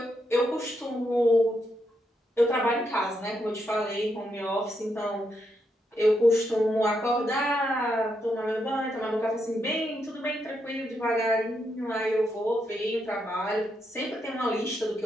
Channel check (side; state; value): both; normal; correlation 0.80